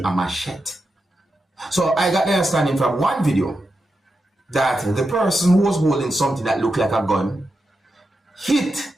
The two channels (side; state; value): both; normal; correlation 0.88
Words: machete. So I got the understanding from one video that the person who was holding something that looked like a gun hit